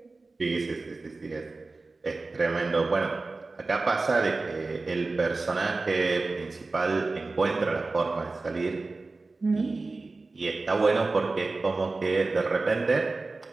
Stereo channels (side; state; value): left; quieter; 3.6 dB